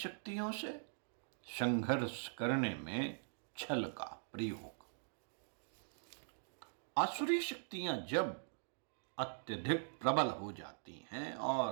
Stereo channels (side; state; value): left; silent; digital silence